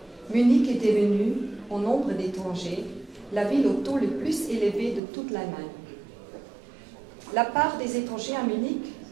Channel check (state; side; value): drops out; left; at 5.0 s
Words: Munich est devenue, au nombre d'étrangers, la ville au taux le plus élevé de toute l'Allemagne. La part des étrangers à Munich